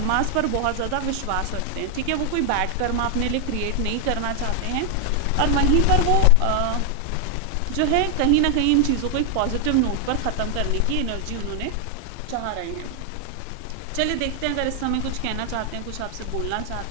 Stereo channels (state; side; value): different; both; correlation 0.00